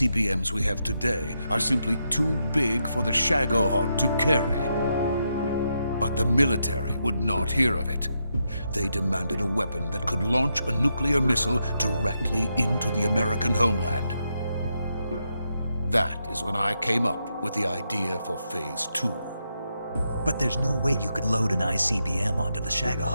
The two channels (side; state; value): both; inverted; correlation -0.83